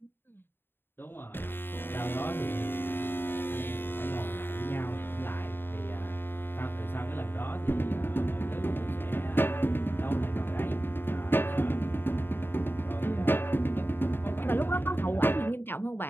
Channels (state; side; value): late; right; 0.10 ms